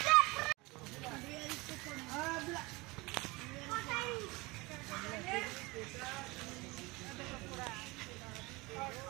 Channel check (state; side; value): quieter; left; 23.6 dB